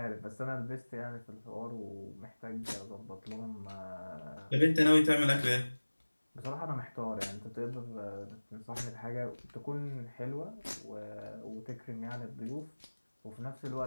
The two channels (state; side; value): inverted; both; correlation -1.00